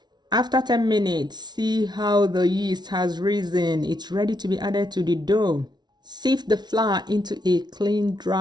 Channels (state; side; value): late; left; 0.20 ms